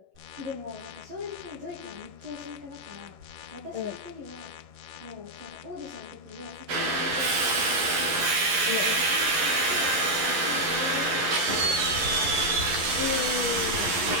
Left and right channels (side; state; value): left; late; 11 ms